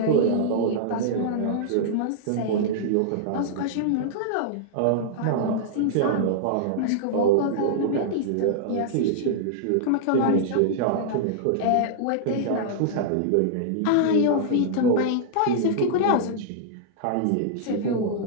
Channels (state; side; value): different; both; correlation -0.01